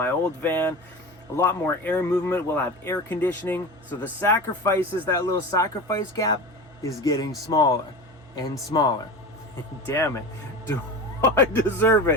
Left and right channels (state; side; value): normal; both; correlation 0.30